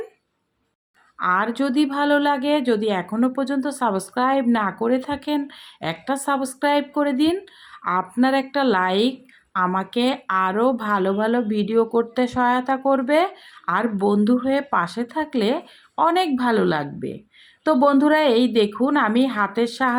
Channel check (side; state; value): both; identical; correlation 1.00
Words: আর যদি ভালো লাগে, যদি এখনও পর্যন্ত সাবস্ক্রাইব না করে থাকেন, একটা সাবস্ক্রাইব করে দিন। আপনার একটা লাইক আমাকে আরও ভালো ভালো ভিডিও করতে সহায়তা করবে। আর বন্ধু হয়ে পাশে থাকলে অনেক ভালো লাগবে। তো বন্ধুরা, এই দেখুন আমি হাতের